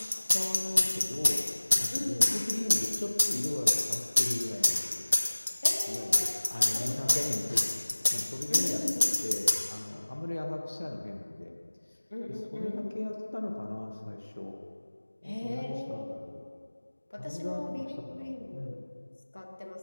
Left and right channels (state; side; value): inverted; both; correlation -1.00